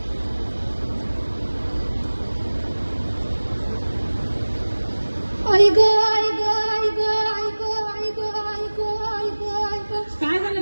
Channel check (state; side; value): inverted; both; correlation -1.00